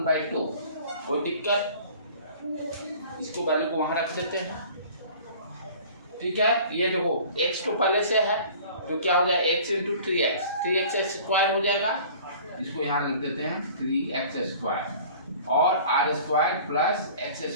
कोई दिक्कत? इसको वैल्यू को वहां रख देते हैं। ठीक है, ये देखो x तो पहले से है, तो क्या हो जाए? x इंटू 3x स्क्वायर हो जाएगा। इसको यहाँ लिख देते हैं 3x स्क्वायर और r square plus x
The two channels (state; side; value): inverted; both; correlation -0.46